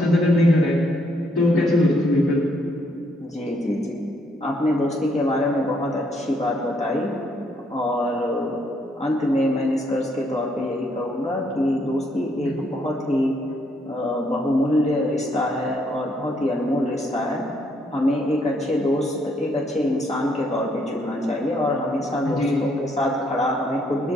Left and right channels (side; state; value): both; normal; correlation 0.71